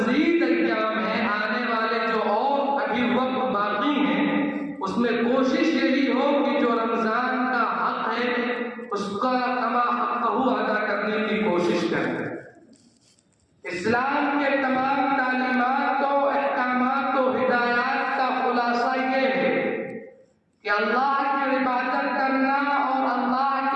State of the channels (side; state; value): both; identical; correlation 1.00